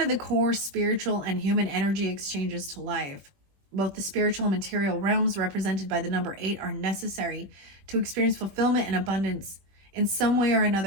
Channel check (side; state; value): left; late; 21 ms